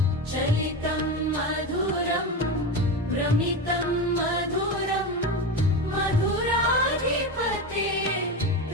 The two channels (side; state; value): both; normal; correlation 0.20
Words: चलितं मधुरं भ्रमितं मधुरं